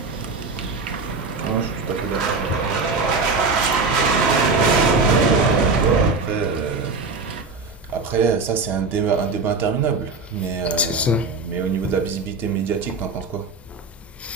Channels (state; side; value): quieter; left; 4.0 dB